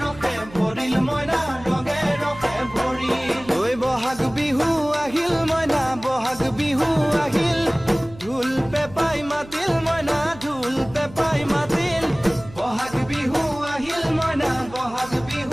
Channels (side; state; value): right; noise; hum, 19 dB below the sound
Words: ৰখে ভৰিল মইনা ৰঙে ৰখে ভৰিল ঐ বহাগ বিহু আহিল মইনা বহাগ বিহু আহিল ঢোল পেপাই মাতিল মইনা ঢোল পেপাই মাতিল বহাগ বিহু আহিল মইনা বহাগ